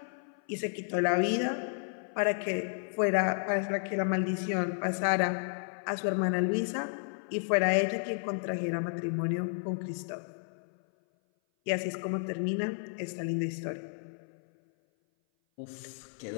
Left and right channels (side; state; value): right; silent; 56 dB below the other